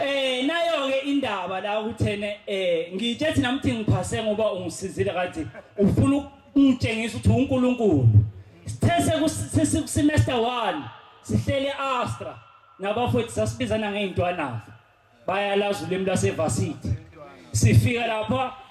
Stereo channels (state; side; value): identical; both; correlation 1.00